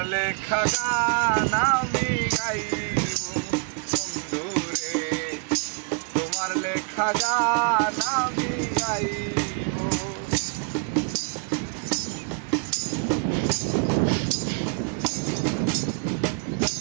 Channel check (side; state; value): left; quieter; 35.1 dB